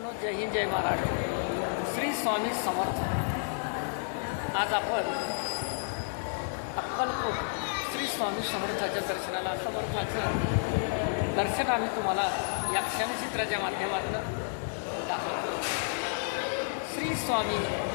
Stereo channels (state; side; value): silent; right; 57 dB below the other